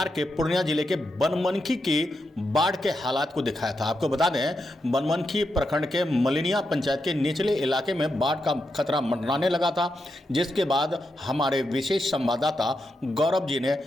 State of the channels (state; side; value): normal; both; correlation 0.85